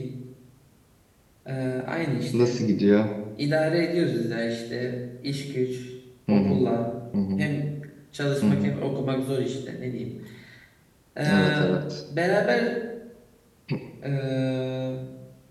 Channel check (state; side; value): identical; both; correlation 1.00